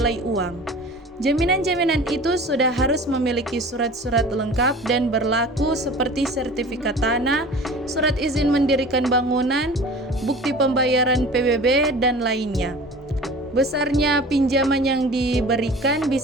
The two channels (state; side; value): normal; both; correlation 0.40